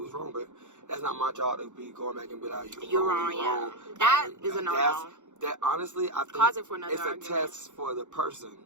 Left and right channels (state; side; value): late; left; 0.85 ms